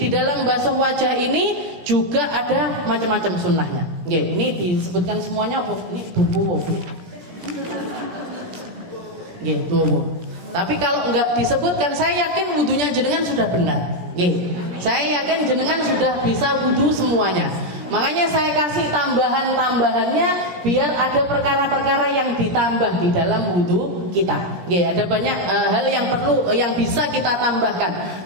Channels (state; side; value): late; left; 17 ms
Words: dalam basuh wajah ini juga ada macam-macam sunnahnya. Ini disebutkan semuanya apa? Ini tubuh. Tubuh. Tapi kalau enggak disebutkan, saya yakin wudhunya jenengan sudah benar. Saya yakin jenengan sudah bisa wudhu semuanya. Makanya saya kasih tambahan-tambahannya biar ada perkara-perkara yang ditambah di dalam wudhu kita. Nggih, ada banyak hal yang perlu yang bisa kita tambahkan.